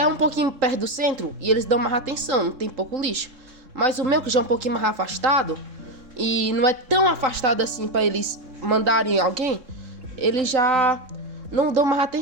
um pouquinho perto do centro, e eles dão mais atenção, não tem pouco lixo. Mas o meu, que já é um pouquinho mais afastado, e não é tão afastado assim para eles mandarem alguém, eles já não dão mais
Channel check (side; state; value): left; late; 3.8 ms